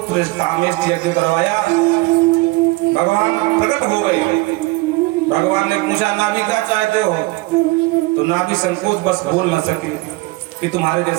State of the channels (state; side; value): quieter; left; 22.2 dB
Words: कामेश यज्ञ करवाया। भगवान प्रकट हो गए। भगवान ने पूछा नाभि क्या चाहते हो, तो नाभि संकोच बस बोल न सके कि तुम्हारे